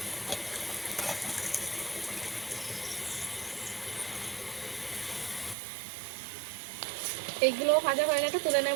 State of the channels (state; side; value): drops out; left; at 5.6 s